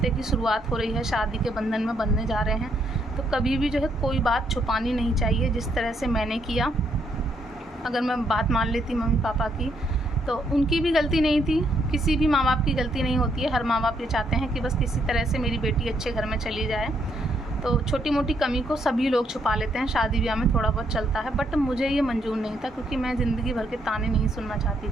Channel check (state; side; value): normal; both; correlation 0.73